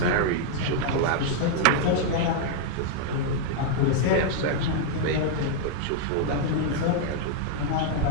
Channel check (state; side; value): different; both; correlation -0.01